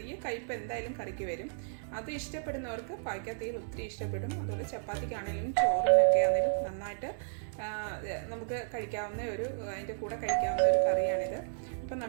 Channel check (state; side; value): silent; left; digital silence